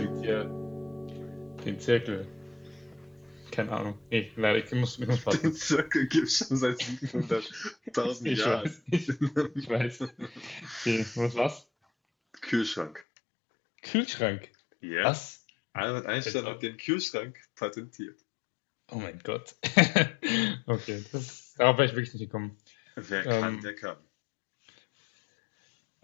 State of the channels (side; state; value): right; drops out; at 13.0 s